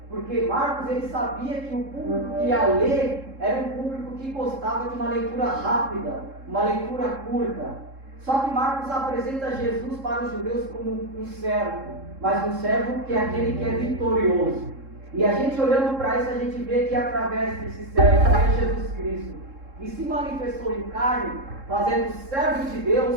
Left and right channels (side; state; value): left; late; 3.7 ms